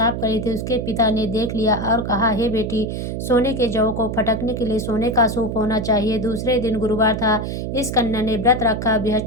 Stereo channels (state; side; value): noise; right; hum, 4 dB below the sound